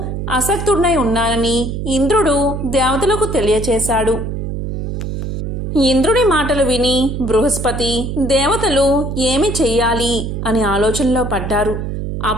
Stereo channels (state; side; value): noise; right; hum, 4 dB below the sound